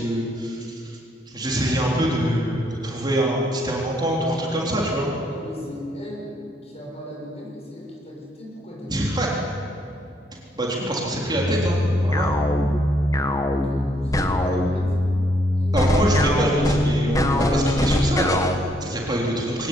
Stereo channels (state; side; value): normal; both; correlation 0.71